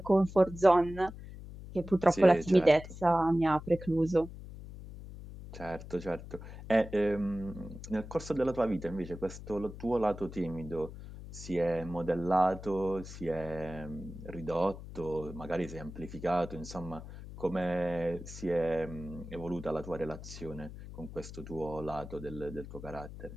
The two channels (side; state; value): left; noise; hum, 13 dB below the sound